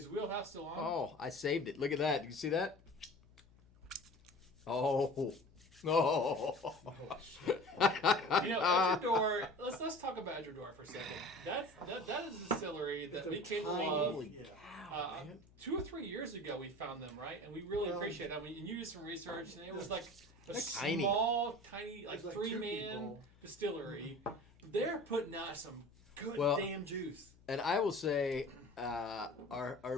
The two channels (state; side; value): noise; left; hum, 26 dB below the sound